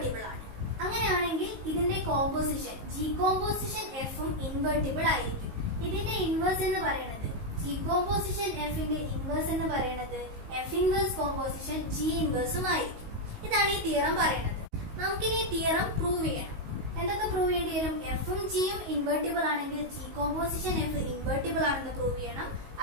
ആണ്. അങ്ങനെയാണെങ്കിൽ ഇതിന്റെ composition G composition എഫും ഇൻവെർട്ടിബിൾ ആയിരിക്കും. ഇതിന്റെ ഇൻവേഴ്സ് എന്ന് പറയുന്നത് ജി കോമ്പോസിഷൻ എഫിന്റെ ഇൻവേഴ്സ് എന്ന് പറയുന്നത് എഫ് ഇൻവേഴ്സ് കോമ്പോസിഷൻ ജി ഇൻവേഴ്സും ആയിരിക്കും. ഇതാണ് ഈ തിയറം പറയുന്നത്. നമുക്കിനി ഈ തിയറം പ്രൂവ് ചെയ്യണം. എന്തൊക്കെ പ്രൂവ് ചെയ്യേണ്ടി വരും? എഫും ജിയും ഇൻവെർട്ടിബിൾ ആണെങ്കിൽ ജി കോമ്പോസിഷൻ എഫ് ഇൻവെർട്ടിബിൾ ആണെന്ന് പ്രൂവ് ചെയ്യണം.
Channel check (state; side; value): late; left; 19 ms